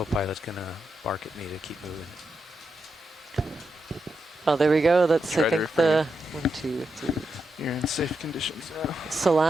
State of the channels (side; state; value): both; normal; correlation 0.85